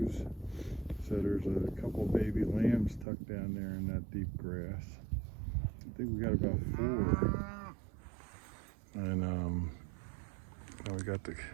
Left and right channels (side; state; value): left; drops out; at 3.1 s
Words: So there's a couple baby lambs tucked down there in that deep grass. I think we got about 4. And now we got the